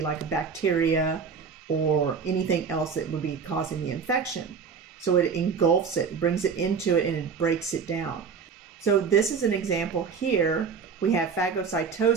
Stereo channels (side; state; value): left; quieter; 5.9 dB